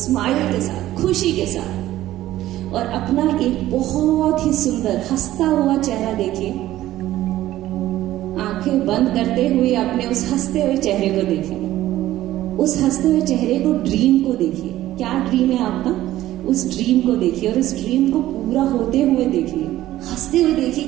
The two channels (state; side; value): quieter; left; 14.6 dB